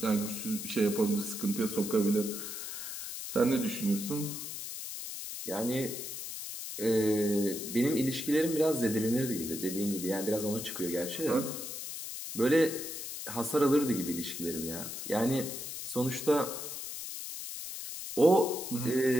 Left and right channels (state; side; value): noise; left; hiss, 7 dB below the sound